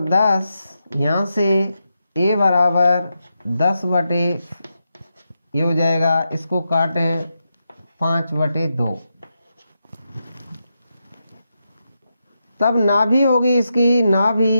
10, यहाँ से a बराबर 10 बटे, ये हो जाएगा, इसको काटें 5/2, तब नाभि होगी इसकी,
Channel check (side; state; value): both; inverted; correlation -0.86